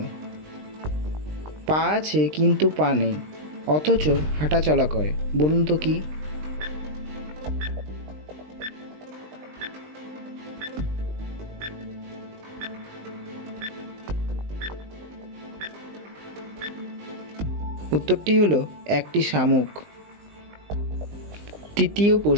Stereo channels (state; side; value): late; left; 20 ms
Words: পা আছে কিন্তু পা নেই, অথচ হাঁটাচলা করে, বলুন তো কি? উত্তরটি হলো একটি শামুক। তৃতীয়